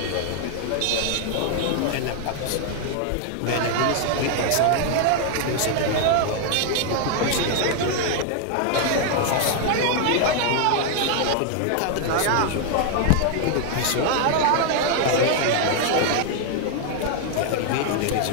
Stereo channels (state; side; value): different; both; correlation 0.00